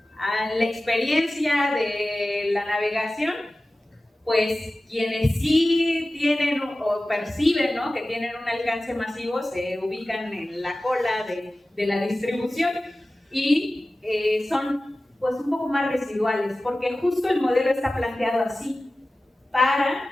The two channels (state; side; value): normal; both; correlation 0.96